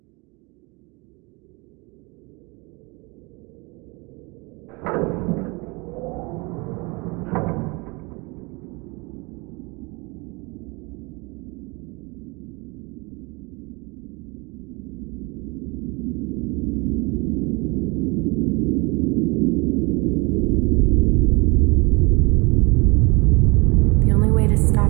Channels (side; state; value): left; quieter; 27.7 dB